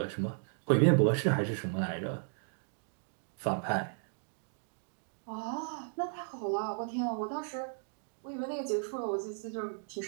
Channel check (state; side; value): silent; left; digital silence